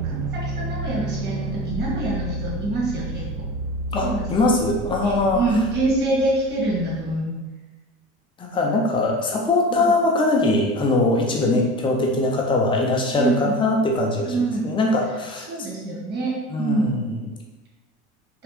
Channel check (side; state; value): both; normal; correlation 0.33